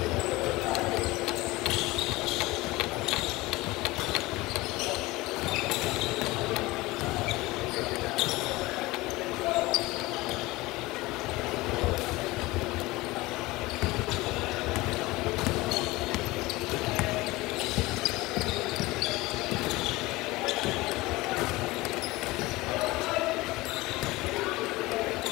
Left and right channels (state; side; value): quieter; right; 20.6 dB